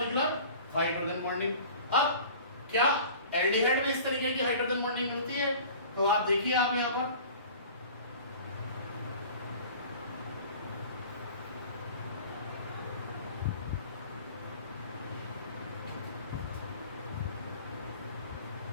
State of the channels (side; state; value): both; inverted; correlation -0.44